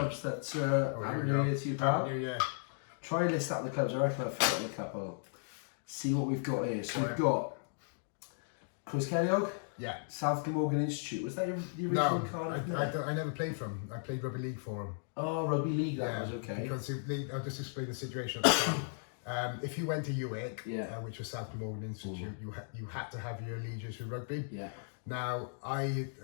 that Happy New Year to you, pal. Happy New Year. Try and list out the clubs. I reckon I've forgotten a couple. See what we've got here. So we've got Chris Kellogg. Yeah. South Glamorgan Institute. Was that the original card? No, I never played for him. I played Rugby League for him. Oh, Rugby League, that was okay. Because I'll just explain the situation at the time. If you went to Uwick, which was South Glamorgan Institute, you had to have your allegiance with rugby. Yeah. Now,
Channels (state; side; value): silent; right; digital silence